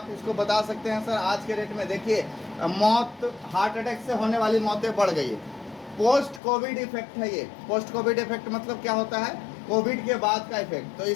इसको बता सकते हैं सर? आज के रेट में देखिए, मौत, हार्ट अटैक से होने वाली मौतें बढ़ गई है। पोस्ट कोविड इफेक्ट है ये। पोस्ट कोविड इफेक्ट मतलब क्या होता है? कोविड के बाद का इफेक्ट। तो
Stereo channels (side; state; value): right; drops out; at 6.4 s